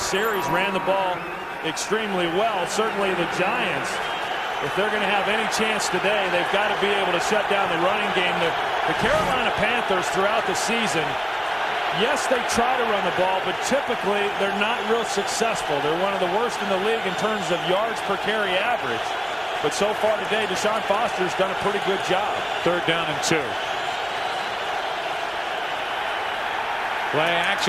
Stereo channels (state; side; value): identical; both; correlation 1.00